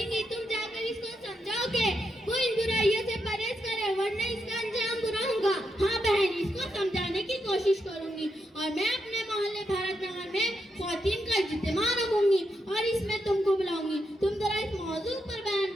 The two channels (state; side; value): normal; both; correlation 0.83